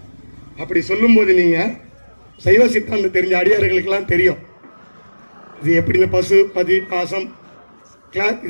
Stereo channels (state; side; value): inverted; both; correlation -1.00